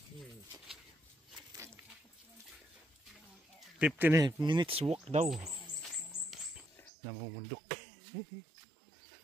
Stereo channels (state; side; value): drops out; left; at 6.9 s